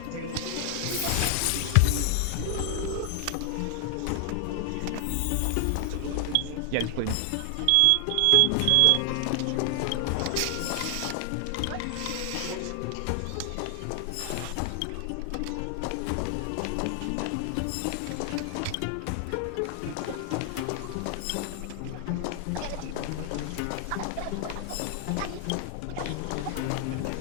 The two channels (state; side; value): different; both; correlation 0.00